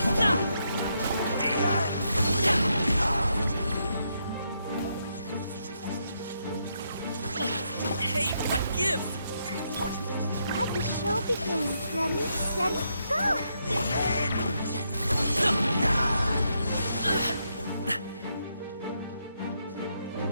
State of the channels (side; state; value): both; inverted; correlation -0.79